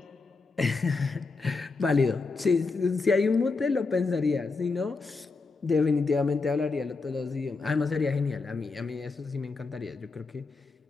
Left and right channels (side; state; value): right; quieter; 4.1 dB